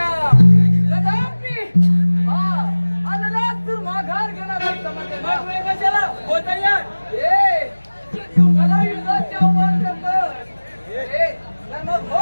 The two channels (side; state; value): both; inverted; correlation -1.00